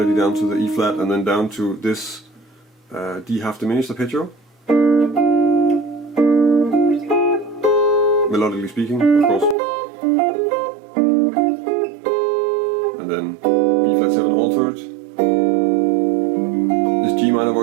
down to the E flat and then down to this D half diminished arpeggio, melodically speaking, of course, and then B flat 7 altered, this G minor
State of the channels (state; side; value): drops out; left; at 9.6 s